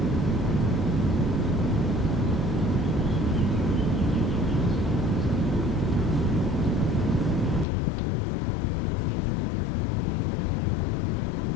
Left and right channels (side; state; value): right; drops out; at 7.7 s